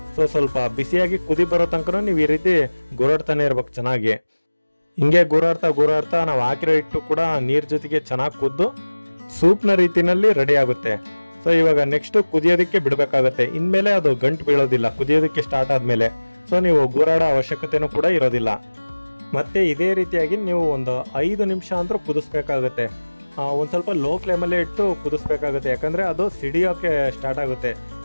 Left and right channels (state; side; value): inverted; both; correlation -1.00